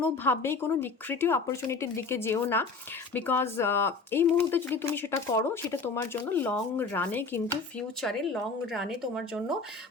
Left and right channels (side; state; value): right; quieter; 4.3 dB